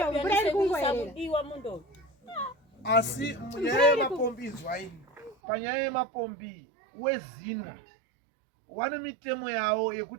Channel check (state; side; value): drops out; left; at 5.4 s